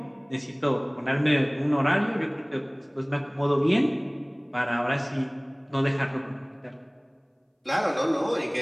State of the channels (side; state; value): both; identical; correlation 1.00